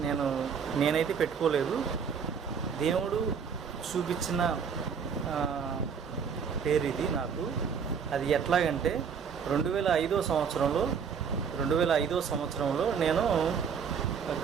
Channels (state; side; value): quieter; left; 6.7 dB